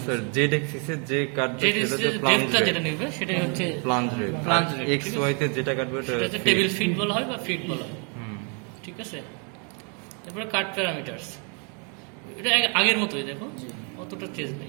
স্যার জেড এক্সিসে যে কাটবে সেটা ডেপথটা যেটা নেবে সেটাই হচ্ছে plunge rate. Plunge rate. X Y তে যেটা কাটবে সেটা হচ্ছে টেবিল ফিট বলা হয় বা ফিট বলা হয়, ঠিক আছে? তারপরে কাট প্যারামিটারস, এটা আগের মতোই, দেখো অতটা চেঞ্জ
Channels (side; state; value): left; quieter; 37.5 dB